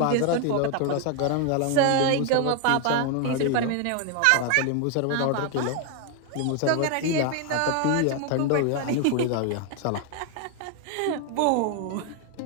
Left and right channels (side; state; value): both; different; correlation 0.01